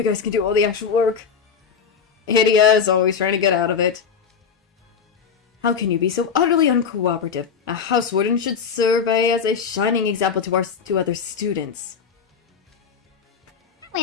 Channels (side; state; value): right; quieter; 6.5 dB